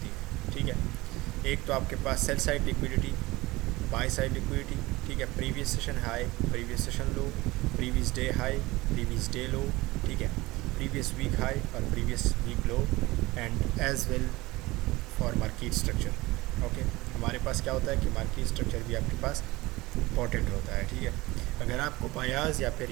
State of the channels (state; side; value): quieter; left; 20.4 dB